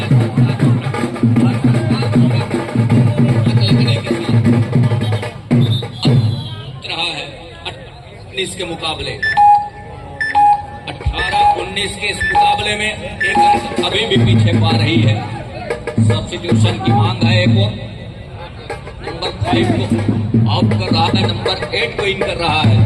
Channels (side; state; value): both; identical; correlation 1.00